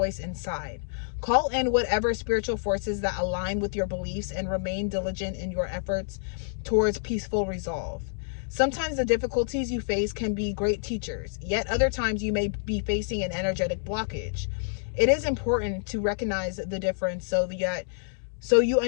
inside. Call in whatever spiritual forces that align with your beliefs and remain diligent in your efforts towards peaceful resolve. Sometimes the difficulties you face can be great teachers, yet other times you may be facing an energetic blockage. It is important to recognize the difference so you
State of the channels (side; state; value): right; silent; digital silence